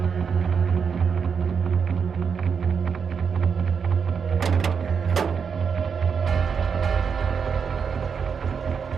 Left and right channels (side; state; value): left; quieter; 6.3 dB